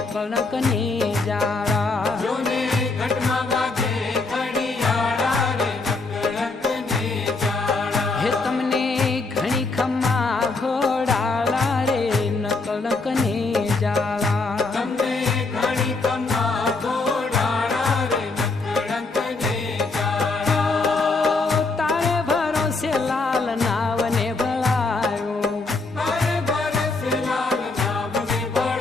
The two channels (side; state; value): right; quieter; 3.7 dB